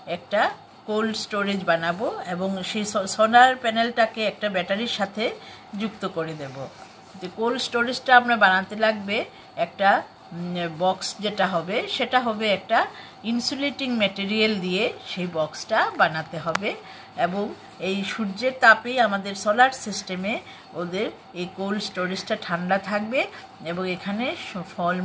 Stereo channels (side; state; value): both; identical; correlation 1.00